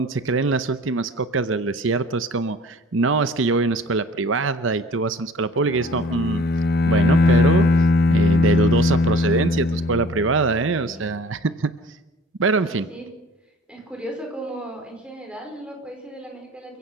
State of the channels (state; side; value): normal; both; correlation 0.48